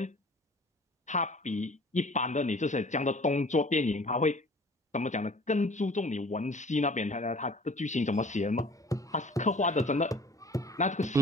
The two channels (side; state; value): both; normal; correlation 0.48